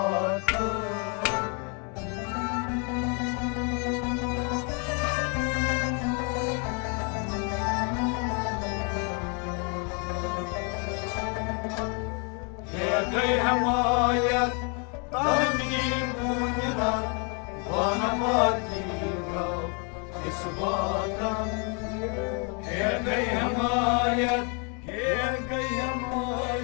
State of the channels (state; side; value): quieter; right; 35.8 dB